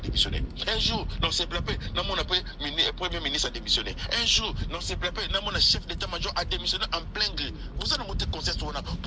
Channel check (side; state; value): both; identical; correlation 1.00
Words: Un jour, non, c'est plappé, mon appel, premier ministre a démissionné. Un jour, non, c'est plappé, mon chef d'état-major a démissionné en plein gré. Vous allez monter conscience,